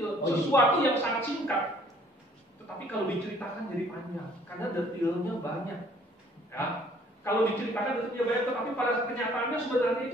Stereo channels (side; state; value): both; normal; correlation 0.59